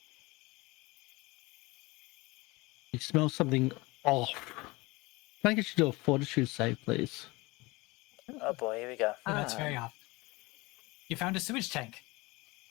You smell something off. Can I get you to do a fortitude save, please? Oh boy, here we go. Oh, that's very off. You found a sewage tank.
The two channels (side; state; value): right; quieter; 23.3 dB